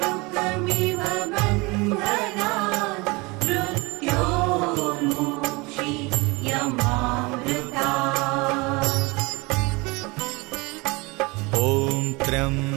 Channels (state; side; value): quieter; left; 25.7 dB